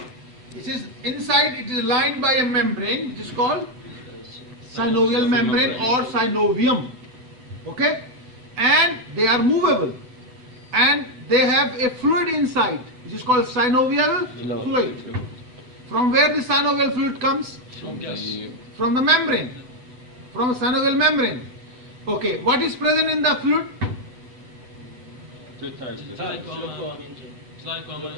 It is inside, it is lined by a membrane which is called synovial membrane or synovium. Okay? And they are movable. And they have a fluid inside which is called synovial fluid. From where the synovial fluid comes? From the membrane. From the synovial membrane. Okay, what is present in the fluid?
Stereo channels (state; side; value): late; left; 7.9 ms